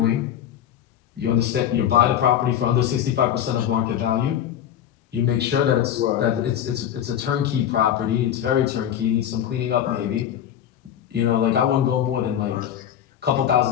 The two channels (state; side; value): quieter; right; 10.3 dB